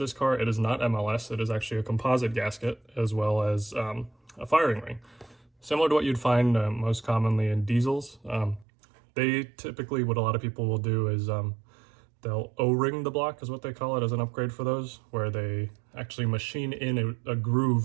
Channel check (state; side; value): drops out; left; at 8.7 s